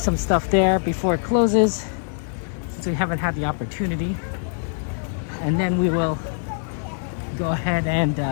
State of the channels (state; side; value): silent; right; 63 dB below the other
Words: stuff there before it closes, since we haven't had the opportunity. And then we will go ahead and